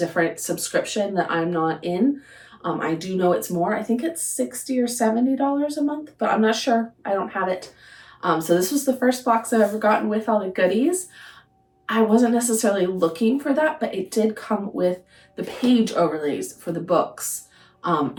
subscription that I'm not in. I do know it's more. I think it's $60 or $70 a month, but I'm not sure. I don't have it. So this was the first box I've ever gotten with all the goodies. I wasn't necessarily looking for that, but it did come with the page overlays for the books.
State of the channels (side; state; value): both; identical; correlation 1.00